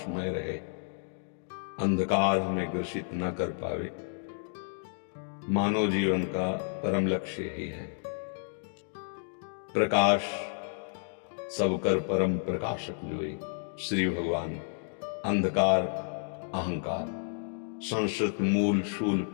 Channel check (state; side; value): silent; right; digital silence